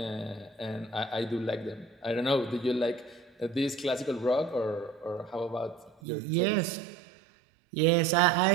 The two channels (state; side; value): drops out; left; at 6.0 s